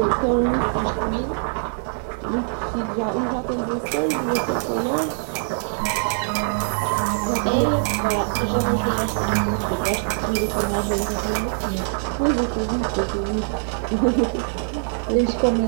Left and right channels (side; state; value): left; silent; digital silence